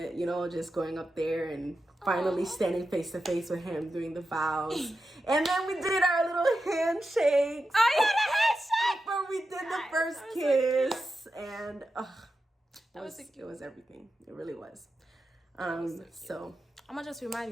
you know, just going up there and finally standing face to face with him doing the vows. And then we did our little handshakes. Oh yeah, the handshake! Where we did the first kiss. And it was everything. It really was. So I'm gonna just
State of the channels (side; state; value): both; normal; correlation 0.90